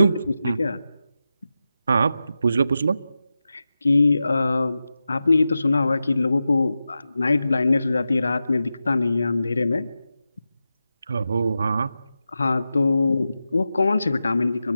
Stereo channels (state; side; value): inverted; both; correlation -0.91